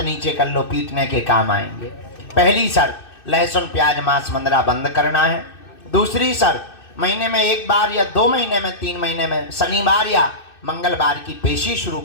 नीचे कर लो, पीटने के काम आएंगे। पहली शर्त, लहसुन प्याज मांस मंदरा बंद करना है। दूसरी शर्त, महीने में एक बार या 2 महीने में 3 महीने में शनिवार या मंगलवार की पेशी शुरू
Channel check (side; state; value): right; late; 2.6 ms